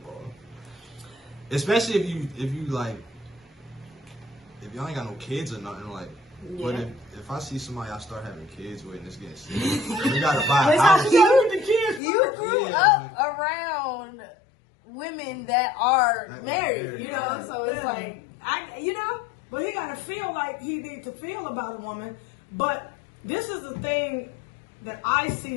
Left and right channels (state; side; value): drops out; right; at 12.0 s